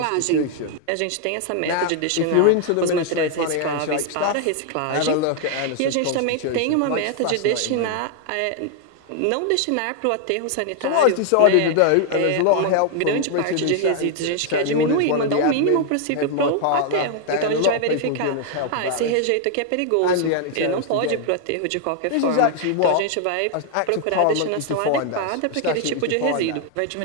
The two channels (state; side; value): different; both; correlation 0.00